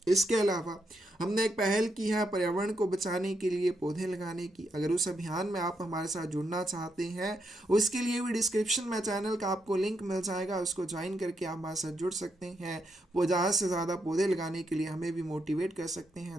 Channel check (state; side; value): normal; both; correlation 0.80